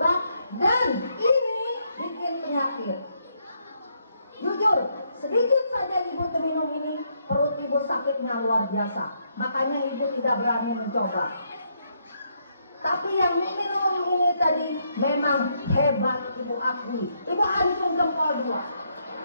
dan ini bikin penyakit. Jujur, sedikit saja ibu minum ini, perut ibu sakitnya luar biasa. Makanya ibu tidak berani mencoba. Tapi yang minum ini tadi memang hebat, ibu akui. Ibu acung jempol 2.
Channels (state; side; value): inverted; both; correlation -0.75